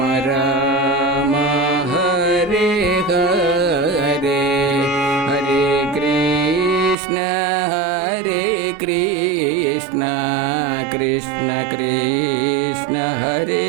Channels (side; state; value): left; drops out; at 7.0 s